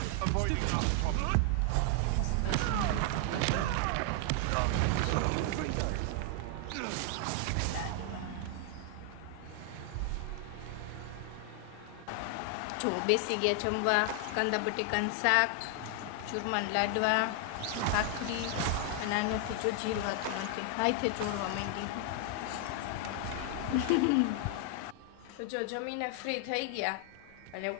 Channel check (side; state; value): both; different; correlation 0.00